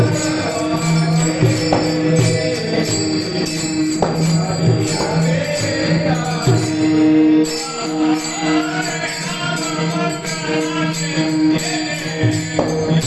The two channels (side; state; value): both; identical; correlation 1.00